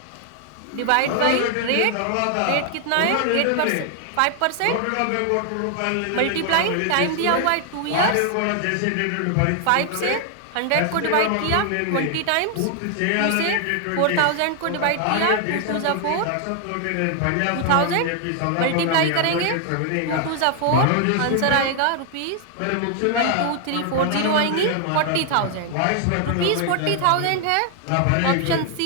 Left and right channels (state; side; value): different; both; correlation 0.00